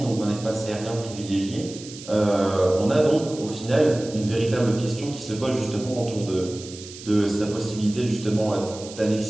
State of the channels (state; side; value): noise; right; hiss, 15 dB below the sound